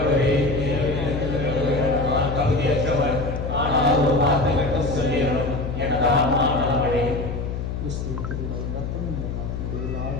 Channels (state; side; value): noise; left; hum, 4 dB below the sound